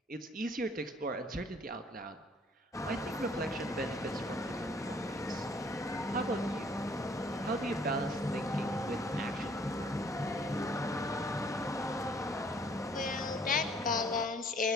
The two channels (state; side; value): normal; both; correlation 0.60